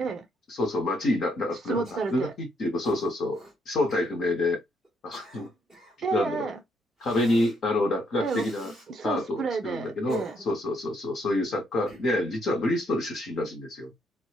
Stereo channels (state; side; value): normal; both; correlation 0.73